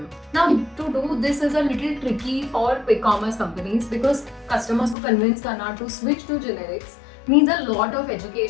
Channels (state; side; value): drops out; right; at 5.0 s